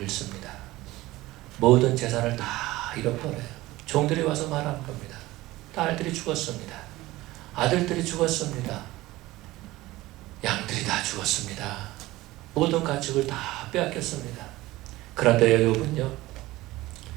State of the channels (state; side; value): quieter; left; 18.3 dB